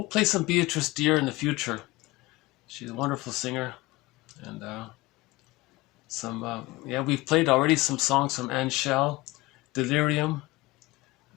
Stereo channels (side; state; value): right; quieter; 20.6 dB